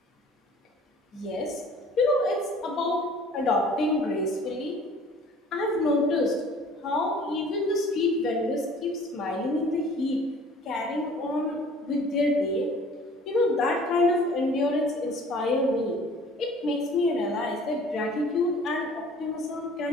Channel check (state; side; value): normal; both; correlation 0.50